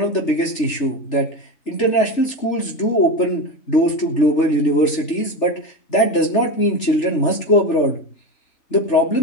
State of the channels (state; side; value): late; right; 3.4 ms